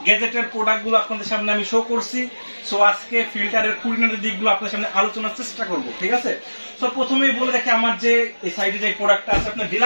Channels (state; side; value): inverted; both; correlation -1.00